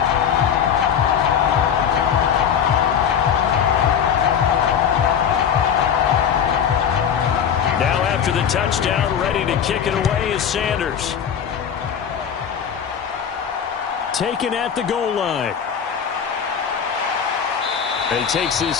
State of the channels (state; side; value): quieter; right; 8.0 dB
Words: After the touchdown, ready to kick it away is Sanders. Taken at the goal line. And he takes